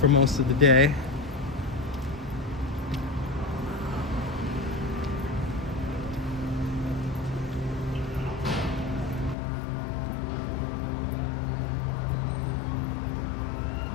most of the day.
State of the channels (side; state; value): right; drops out; at 9.3 s